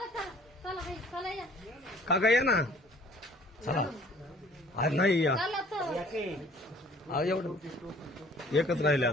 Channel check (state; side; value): normal; both; correlation 0.54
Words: काका या ना. चला आज नाही या. एवढं एकच राहिले